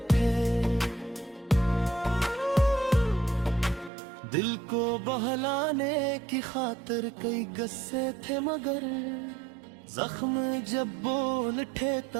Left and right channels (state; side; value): drops out; left; at 3.9 s